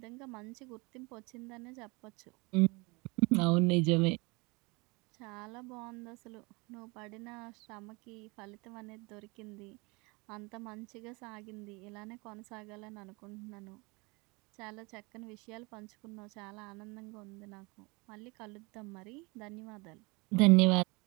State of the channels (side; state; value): left; quieter; 27.0 dB